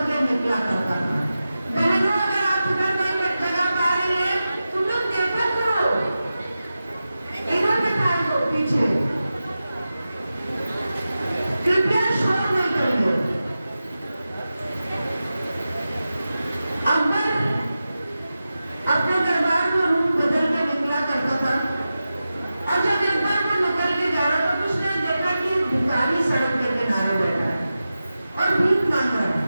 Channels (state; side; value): inverted; both; correlation -0.93